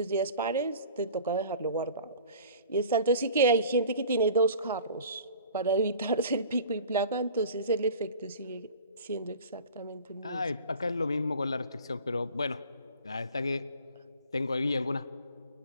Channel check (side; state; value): both; inverted; correlation -0.43